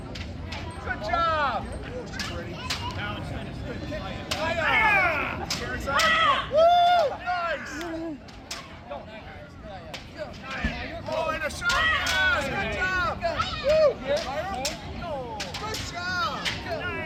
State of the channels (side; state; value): both; identical; correlation 1.00